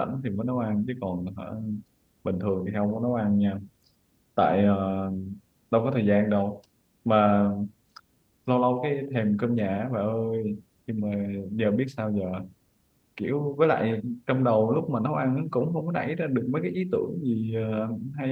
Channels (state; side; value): identical; both; correlation 1.00